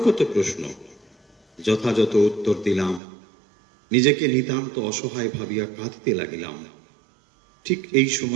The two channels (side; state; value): left; drops out; at 3.0 s